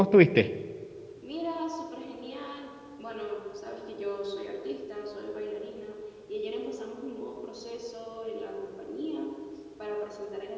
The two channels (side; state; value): both; identical; correlation 1.00